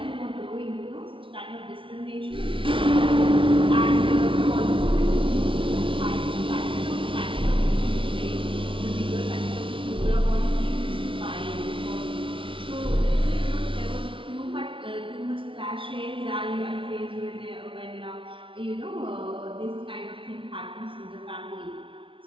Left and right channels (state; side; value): late; left; 0.25 ms